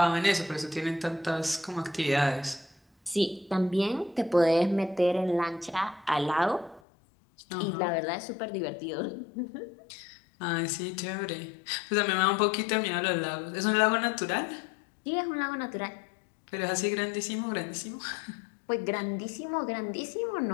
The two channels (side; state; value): right; drops out; at 6.8 s